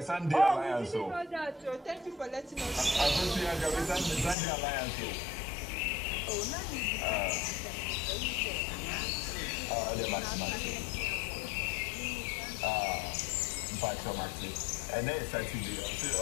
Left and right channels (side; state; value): right; drops out; at 4.4 s